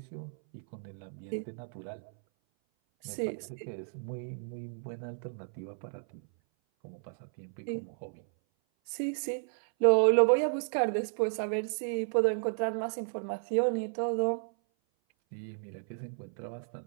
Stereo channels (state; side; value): silent; left; 56 dB below the other